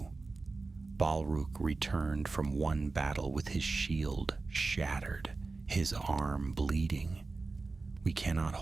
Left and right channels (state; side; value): quieter; left; 3.8 dB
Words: Balrog returned from one battle with his shield shattered, his arm bleeding. "We cannot